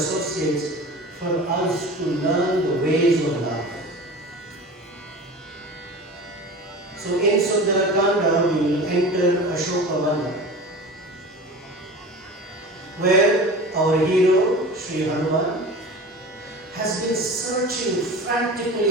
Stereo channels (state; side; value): normal; both; correlation 0.35